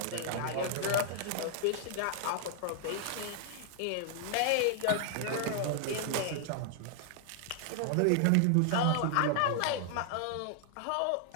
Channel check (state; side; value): different; both; correlation 0.00